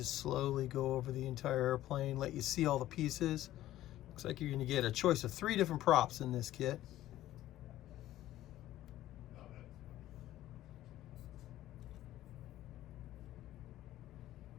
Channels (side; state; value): right; quieter; 14.2 dB